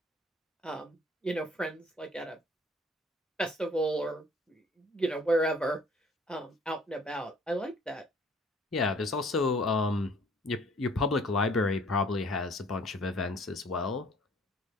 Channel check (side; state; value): both; normal; correlation 0.56